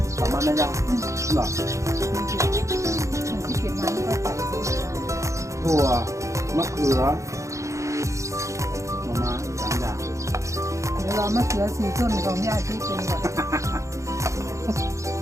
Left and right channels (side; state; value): left; late; 0.15 ms